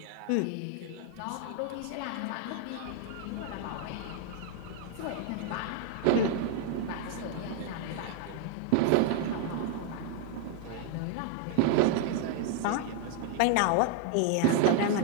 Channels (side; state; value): both; different; correlation 0.00